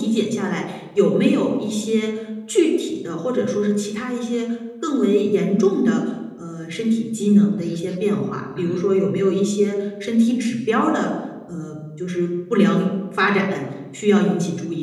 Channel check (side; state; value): both; identical; correlation 1.00